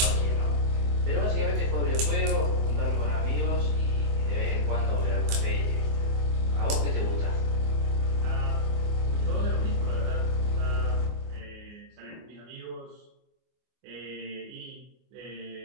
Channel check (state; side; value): late; left; 24 ms